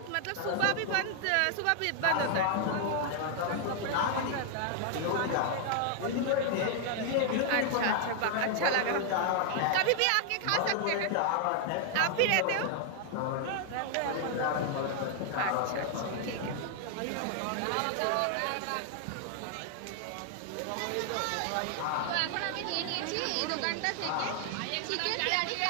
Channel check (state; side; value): different; both; correlation 0.00